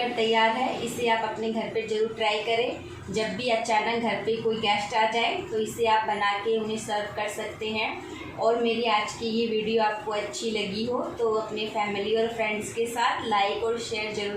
तैयार है। इसे आप अपने घर पे ज़रूर ट्राई करें। जब भी अचानक घर पे कोई गेस्ट आ जाए तो इसे आप बना के उन्हें सर्व कर सकते हैं। और मेरी आज की ये वीडियो आपको अच्छी लगी हो तो अपने फैमिली और फ्रेंड्स के साथ लाइक और शेयर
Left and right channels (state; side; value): identical; both; correlation 1.00